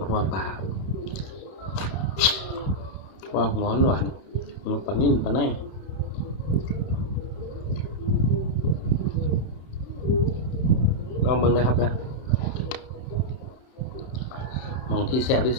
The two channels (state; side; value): late; right; 31 ms